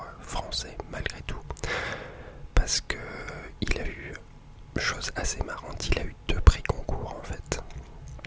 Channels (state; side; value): identical; both; correlation 1.00